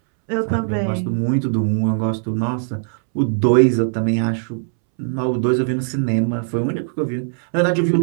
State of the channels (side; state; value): left; silent; 66 dB below the other